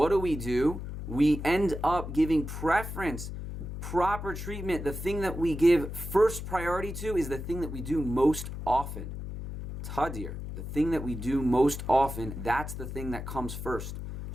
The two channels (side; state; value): left; noise; hum, 7 dB below the sound